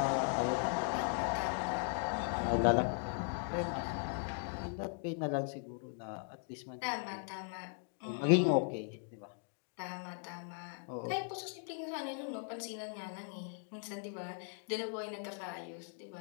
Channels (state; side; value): silent; right; 52 dB below the other